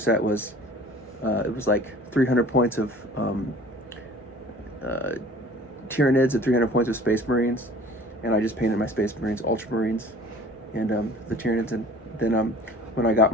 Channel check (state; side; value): normal; both; correlation 0.47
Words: was, it was like 300 points of Tyranids and 300 points of Space Marines, and I just painted my Space Marines Ultramarines and the Tyranids. And then when I got